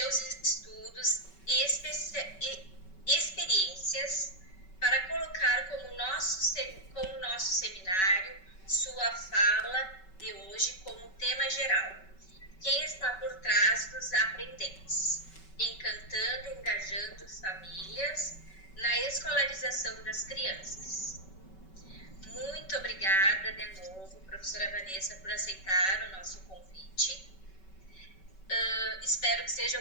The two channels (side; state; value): right; late; 5.3 ms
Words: estudos e experiências para colocar como nosso seminário sua fala de hoje como tema geral. Quem está por trás dos aprendentes, encantando e engajando famílias na escolarização das crianças. Muito obrigada de novo, professora Vanessa, por aceitar o nosso convite. Espero que seja